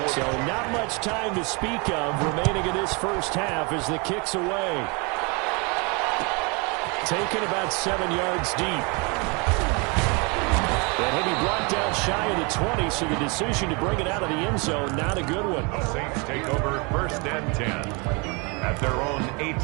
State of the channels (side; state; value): left; quieter; 30.7 dB